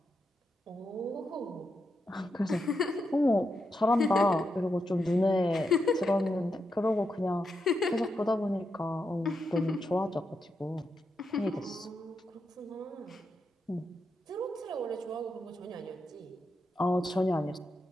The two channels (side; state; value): both; normal; correlation 0.84